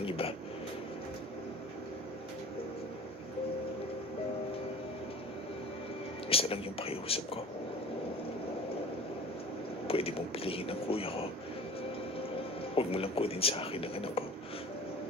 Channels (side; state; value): both; normal; correlation 0.40